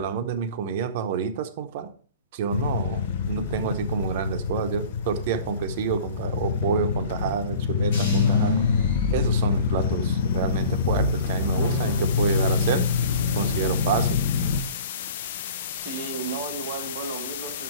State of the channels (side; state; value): both; inverted; correlation -0.43